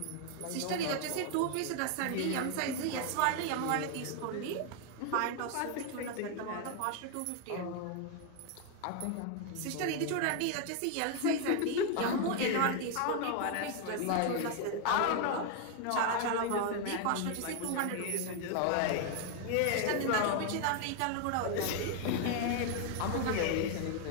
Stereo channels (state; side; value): different; both; correlation 0.01